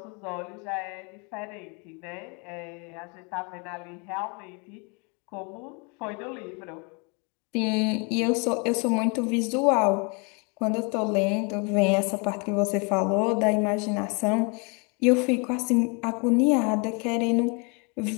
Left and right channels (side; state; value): right; quieter; 32.9 dB